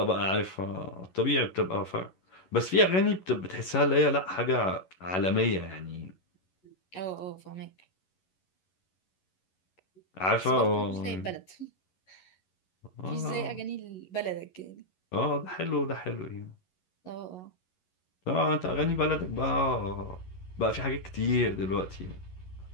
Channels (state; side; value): late; right; 11 ms